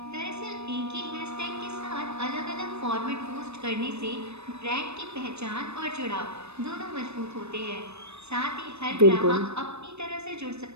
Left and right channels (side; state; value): left; late; 0.80 ms